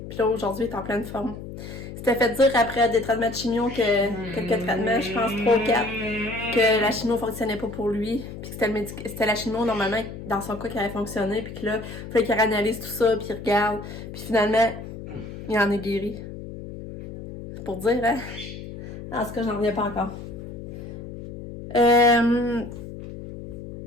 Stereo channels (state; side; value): noise; left; hum, 11 dB below the sound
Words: Puis là, aujourd'hui, il est en pleine forme. C'était fait dire après des traitements de chimio que quelques traitements, je pense 3 ou 4, que la chimio fonctionnait pas pour lui. Puis que c'était la chimio, normalement, dans son cas, qui avait fonctionné. Puis que là, il fallait qu'il analyse tout ça, puis il regarde. Puis finalement, il en est guéri. C'est pour dire, hein? En tout cas, j'en reviens pas encore. Fait